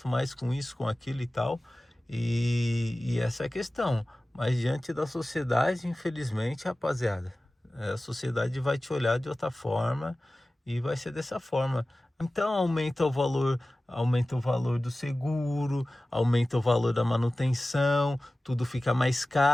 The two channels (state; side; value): normal; both; correlation 0.97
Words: mais com isso, com aquilo e tal. E essa é a questão. Mas diante da sociedade, infelizmente, rapaziada, a sociedade vai te olhar de outra forma e vai ser dessa forma. Então aumenta o valor do seguro, aumenta o valor da manutenção, tudo fica mais